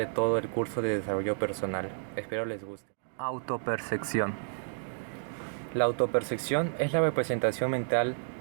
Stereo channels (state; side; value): silent; left; digital silence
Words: todo el curso de desarrollo personal. Espero les guste. Autopercepción. La autopercepción es la representación mental